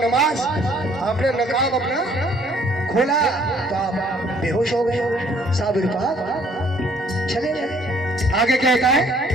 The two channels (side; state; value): both; normal; correlation 0.61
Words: आपने नकाब अपना खोला तो आप बेहोश हो गए, साबिर पाक चले गए। आगे क्या होता है